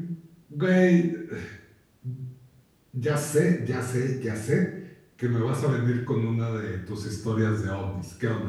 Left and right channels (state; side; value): identical; both; correlation 1.00